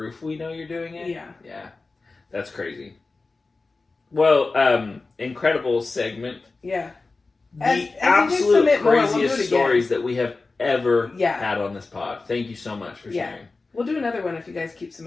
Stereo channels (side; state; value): right; quieter; 3.7 dB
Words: we know you're doing it. Yeah. Yeah. That's crazy. Well, incredible segment. Yeah. The absolute craziest stories that we have ever had on this pod. Thank you so much for sharing. We'll do another one if you guys keep